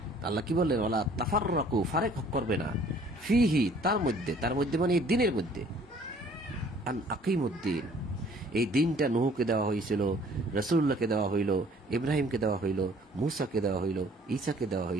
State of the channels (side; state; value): both; normal; correlation 0.56